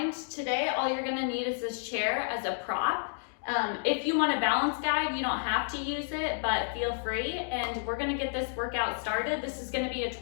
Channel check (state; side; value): silent; right; digital silence